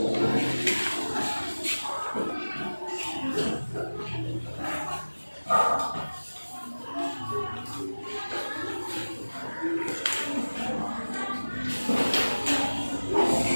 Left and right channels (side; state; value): both; inverted; correlation -1.00